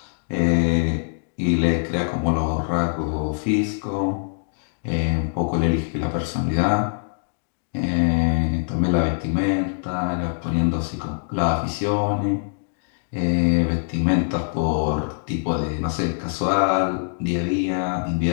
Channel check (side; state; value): right; silent; digital silence